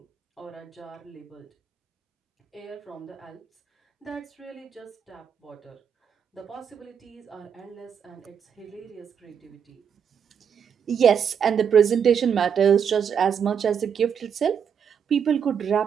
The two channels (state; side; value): quieter; left; 7.5 dB